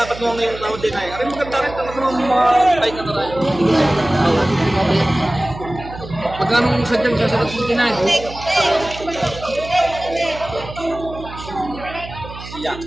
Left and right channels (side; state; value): right; noise; hum, 13 dB below the sound